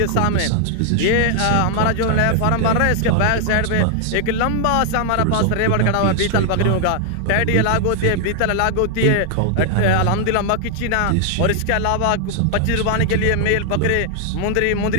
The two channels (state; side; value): different; both; correlation 0.00